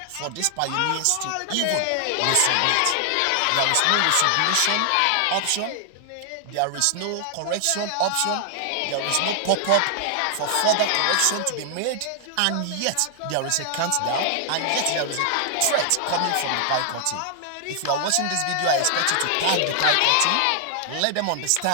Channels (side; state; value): both; different; correlation 0.00